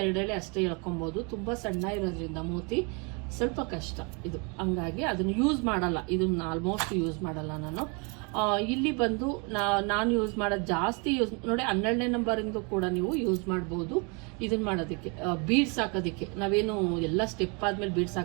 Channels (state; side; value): quieter; left; 32.8 dB